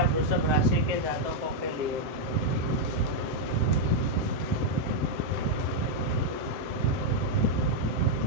वृषभ राशि के जातकों के लिए।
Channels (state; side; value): late; left; 7.8 ms